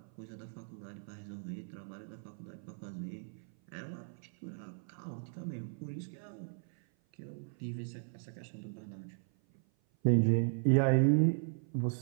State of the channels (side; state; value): left; silent; 53 dB below the other